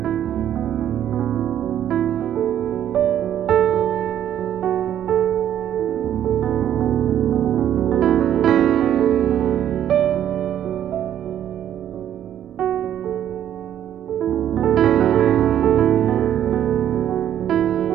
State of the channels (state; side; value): quieter; left; 10.6 dB